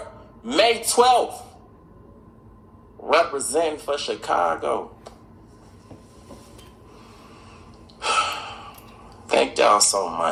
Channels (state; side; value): identical; both; correlation 1.00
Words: May 12th. Representing for Chicago. Thank y'all so